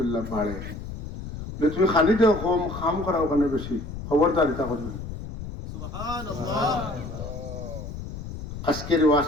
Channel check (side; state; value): left; noise; rumble, 9 dB below the sound